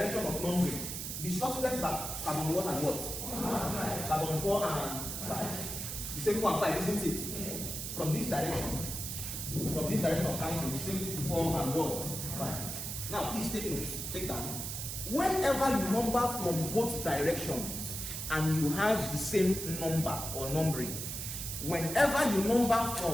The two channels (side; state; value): right; noise; hiss, 5 dB below the sound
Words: of numbering, the substituents are carbon 1 and what? Carbon 4 and 5. The same 4 and 5, isn't it? Yes. From this direction of counting, the same 4 and what? 5. Now, please take notes. Take down. Whenever you number from both directions and you have the same number or numbering, whenever you number